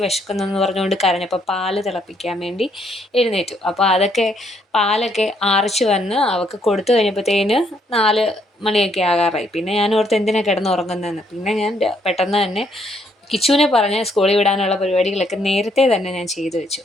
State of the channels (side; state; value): both; normal; correlation 0.71